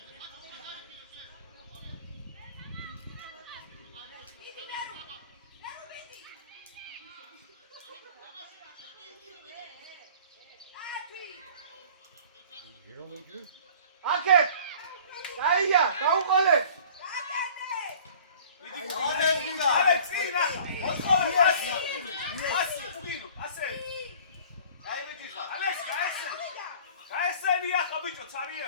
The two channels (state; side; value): inverted; both; correlation -0.48